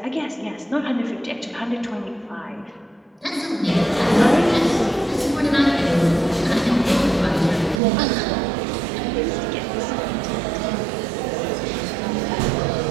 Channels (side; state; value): left; drops out; at 7.8 s